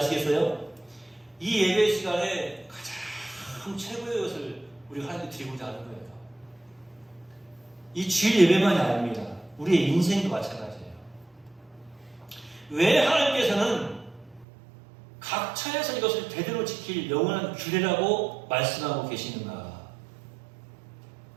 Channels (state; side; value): drops out; left; at 14.5 s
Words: 이 예배 시간에 가장 최고의 것을 우리가 하나님께 드리고자 하는 거예요. 이 주일 예배만이 아닙니다. 우리의 인생도 마찬가지예요. 왜 하나님께서는 각처에서 이것을 대대로 지킬 영원한 규례라고 말씀하고 계시는가?